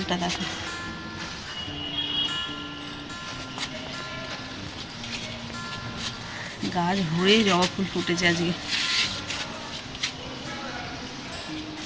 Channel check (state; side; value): identical; both; correlation 1.00